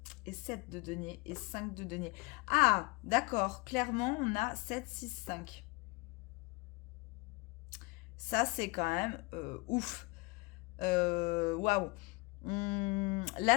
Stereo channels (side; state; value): right; quieter; 26.3 dB